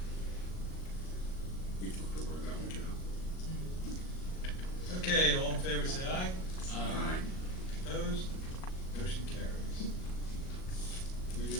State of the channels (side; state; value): right; late; 38 ms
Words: you took the word out of my mouth. Okay, all in favor, say aye. Aye. Opposed? Motion carries. We